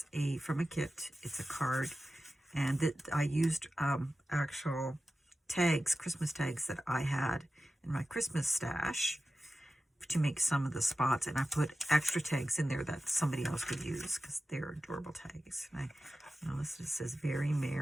from a kit. It's a card, and I used actual tags, Christmas tags that I had in my Christmas stash to make some of the spots, and I put extra tags in there that somebody else could use because they're adorable tags. And this says "Very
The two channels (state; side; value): normal; both; correlation 0.93